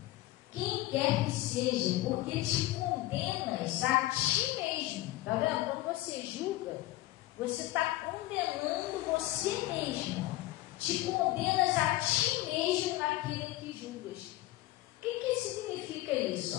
quem quer que seja, porque te condenas a ti mesmo. Está vendo? Quando você julga, você está condenando você mesmo. Te condenas a ti mesmo naquilo que julgas. O que significa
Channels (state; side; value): quieter; right; 17.0 dB